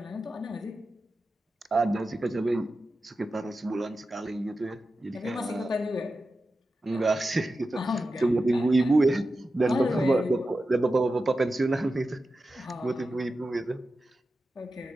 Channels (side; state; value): both; normal; correlation 0.92